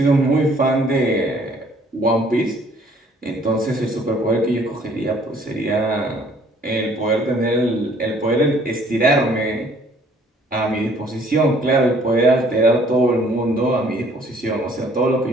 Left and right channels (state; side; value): normal; both; correlation 0.59